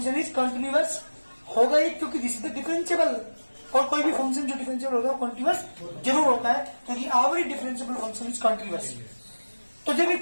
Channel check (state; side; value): inverted; both; correlation -1.00